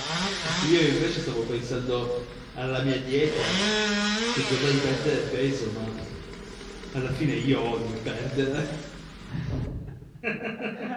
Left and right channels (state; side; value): identical; both; correlation 1.00